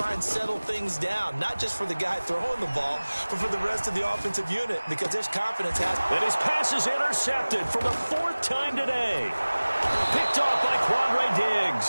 and settle things down, not just for the guy throwing the ball, but for the rest of the offensive unit, because there's confidence. And his pass is intercepted for the 4th time today. Picked off by Quandre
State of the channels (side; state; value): both; inverted; correlation -1.00